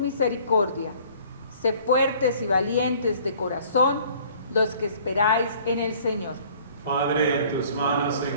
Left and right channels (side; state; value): both; inverted; correlation -0.54